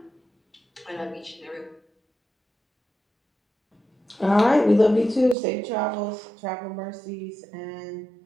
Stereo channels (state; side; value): drops out; left; at 5.4 s